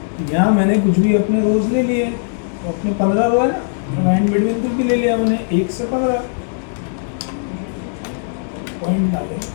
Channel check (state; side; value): silent; right; 67 dB below the other